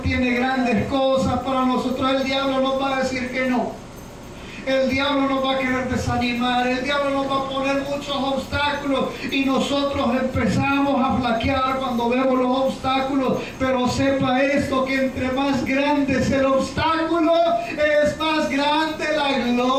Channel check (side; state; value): both; identical; correlation 1.00